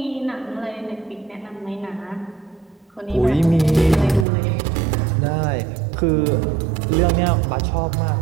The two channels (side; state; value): left; drops out; at 4.2 s